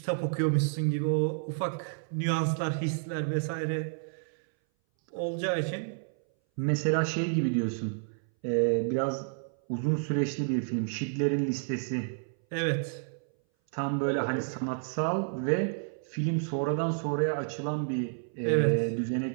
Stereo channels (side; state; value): left; silent; 58 dB below the other